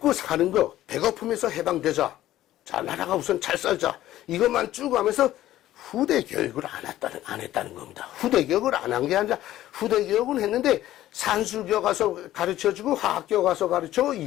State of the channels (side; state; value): right; quieter; 14.0 dB